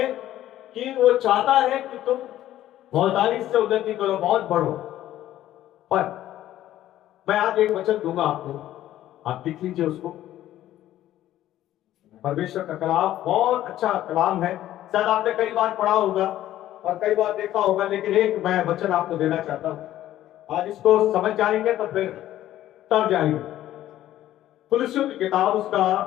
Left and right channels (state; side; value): quieter; right; 13.3 dB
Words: कि वो चाहता है कि तुम बहुतायत से उन्नति करो, बहुत बढ़ो। पर मैं आज एक वचन दूंगा आपको, आप लिख लीजिए उसको। परमेश्वर का कलाम बहुत अच्छा कलाम है, शायद आपने कई बार पढ़ा होगा और कई बार देखा होगा, लेकिन एक मैं वचन आपको देना चाहता हूं। आज इसको समझ जाएंगे तो फिर तब जाएंगे। कुलुस्सियों की किताब उसका